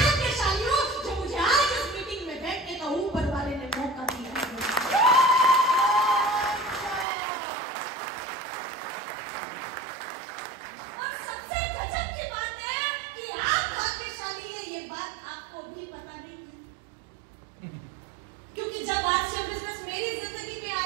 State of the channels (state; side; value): drops out; left; at 7.1 s